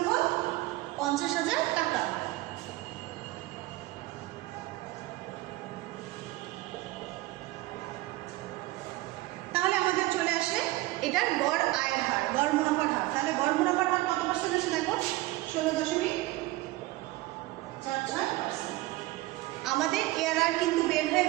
টাকা। তাহলে আমাদের চলে আসে এটার গড় আয়ের হার, গড় মুনাফার হার। তাহলে গড় মুনাফার হার কত পার্সেন্ট আসে দেখো? 16.46%। আমাদের এআরআর কিন্তু বের হয়ে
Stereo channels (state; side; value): quieter; left; 19.0 dB